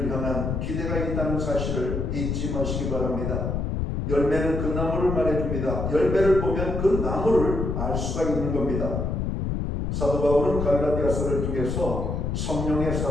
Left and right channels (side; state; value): left; noise; rumble, 2 dB below the sound